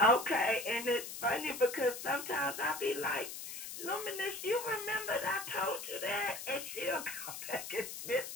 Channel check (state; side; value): noise; left; hiss, 8 dB below the sound